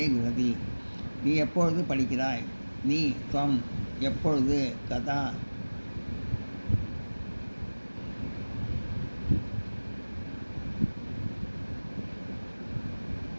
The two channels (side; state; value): both; inverted; correlation -1.00